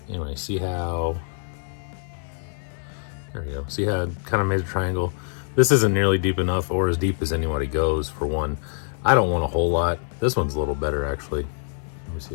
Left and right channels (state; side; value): silent; right; 62 dB below the other